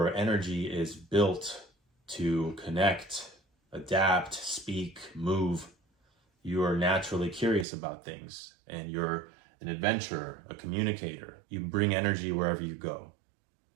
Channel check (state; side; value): drops out; left; at 7.7 s